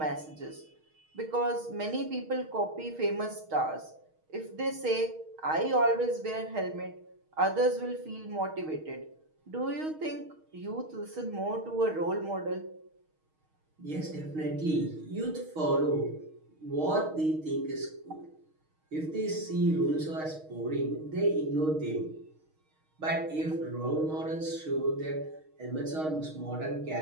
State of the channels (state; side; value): late; left; 6.4 ms